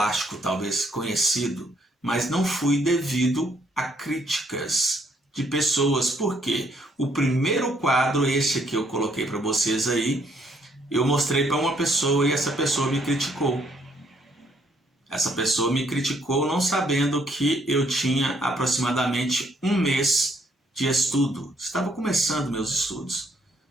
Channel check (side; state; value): both; normal; correlation 0.69